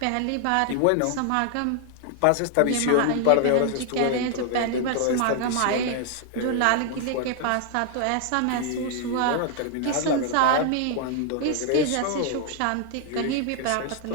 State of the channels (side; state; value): both; different; correlation 0.00